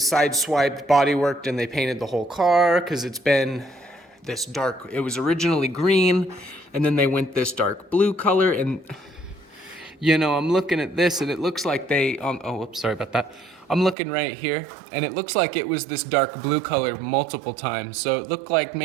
side swiped, body worked, and they painted the whole car, because it's been this dark. It was originally green, and then they went this dark blue color. And you know, I'm looking at this, and it looks like they oh, oops, sorry about that. I'm looking right here, and it looks like it was this dark blue color multiple times. So it looked like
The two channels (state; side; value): drops out; left; at 14.0 s